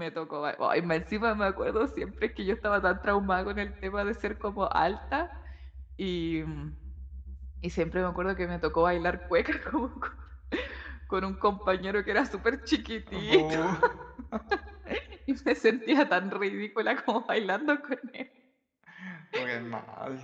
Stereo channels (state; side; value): identical; both; correlation 1.00